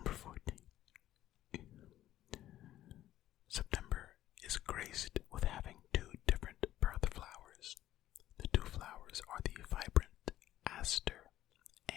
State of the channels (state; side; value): quieter; right; 13.4 dB